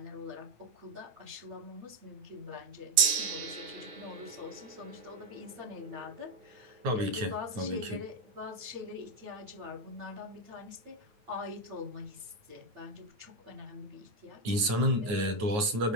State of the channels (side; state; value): left; late; 9.4 ms